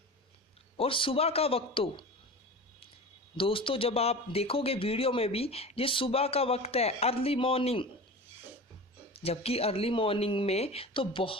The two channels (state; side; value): normal; both; correlation 0.33